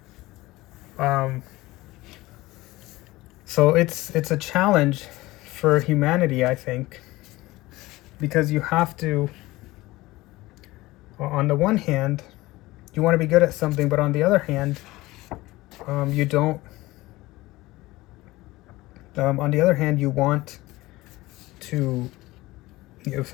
so it's a challenge for humanity, I think, because you have to, on the one hand, you want to be good at something, but on the other hand, you don't. On the other hand, you want to.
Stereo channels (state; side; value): quieter; right; 19.2 dB